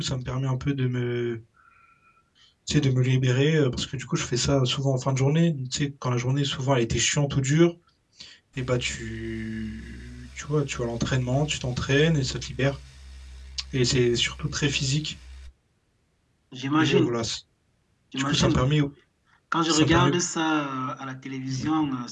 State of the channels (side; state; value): both; identical; correlation 1.00